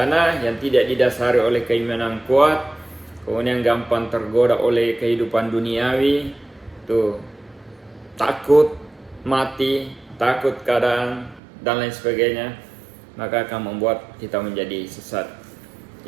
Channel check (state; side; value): drops out; left; at 11.4 s